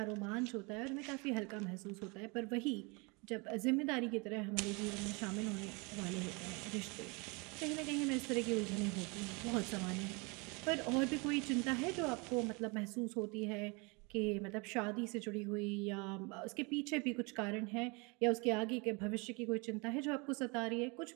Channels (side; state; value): left; quieter; 29.4 dB